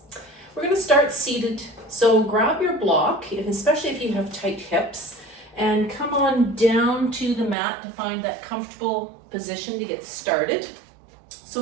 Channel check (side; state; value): left; drops out; at 7.6 s